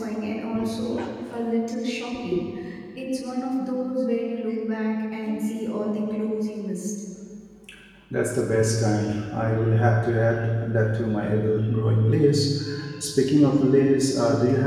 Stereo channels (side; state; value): both; identical; correlation 1.00